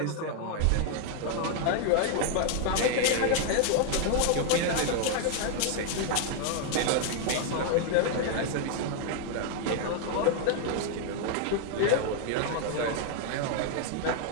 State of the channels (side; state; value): both; different; correlation 0.00